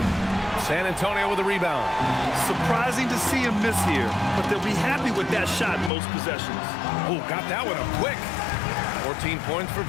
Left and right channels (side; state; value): right; drops out; at 5.9 s